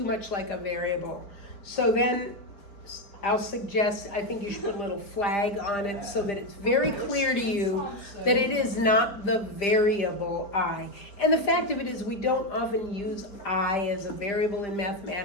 much like a variable. So then I'll suggest, I think you should put a little flag on it so that it's very clear to you that it is not the variable I. And the fact of it is we don't often use I as a variable in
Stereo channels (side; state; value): right; late; 5.0 ms